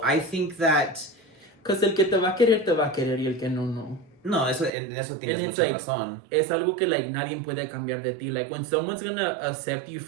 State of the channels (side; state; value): left; drops out; at 4.7 s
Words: I think that because el que te va a querer y el que no. No, eso tienes mucha razón. Es algo que like nadie puede cambiar de ti. Like when someone's gonna accept you